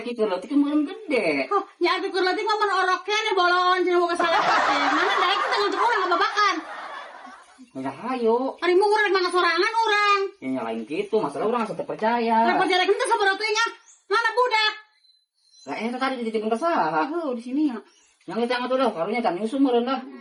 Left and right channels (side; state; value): both; identical; correlation 1.00